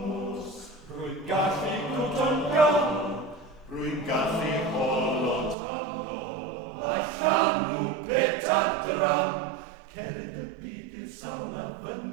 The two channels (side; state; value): left; drops out; at 5.6 s